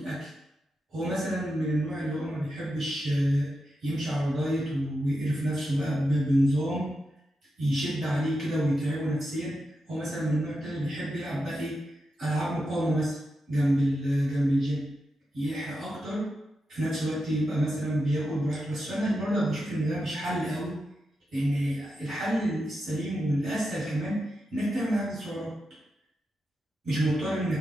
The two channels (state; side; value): normal; both; correlation 0.88